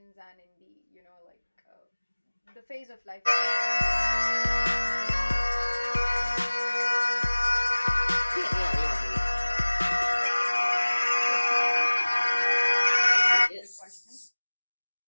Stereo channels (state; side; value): inverted; both; correlation -1.00